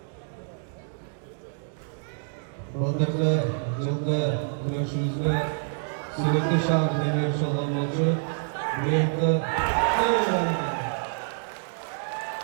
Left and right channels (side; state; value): left; silent; digital silence